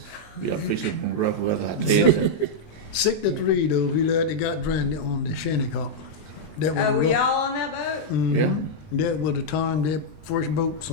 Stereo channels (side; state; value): right; late; 19 ms